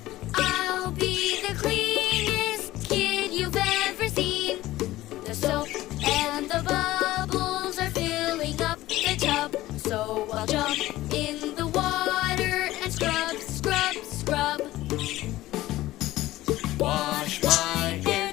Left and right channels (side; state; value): right; quieter; 16.4 dB